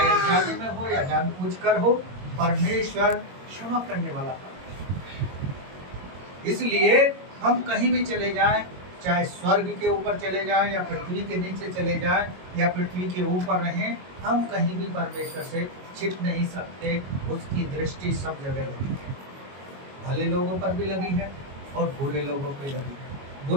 अनजाने में हो या जानबूझकर हो, परमेश्वर क्षमा करने वाला है। इसलिए हम कहीं भी चले जाएं, चाहे स्वर्ग के ऊपर चले जाएं या पृथ्वी के नीचे चले जाएं या पृथ्वी के ऊपर रहें, हम कहीं भी परमेश्वर से छिप नहीं सकते। उसकी दृष्टि सब जगह लगी है, भले लोगों पर भी लगी है और बुरे लोगों पर लगी है।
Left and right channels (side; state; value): left; late; 22 ms